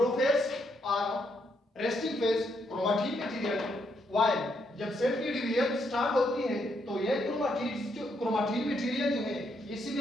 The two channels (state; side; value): normal; both; correlation 0.76